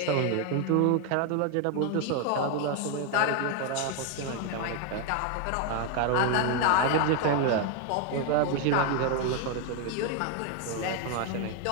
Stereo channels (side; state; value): both; different; correlation 0.01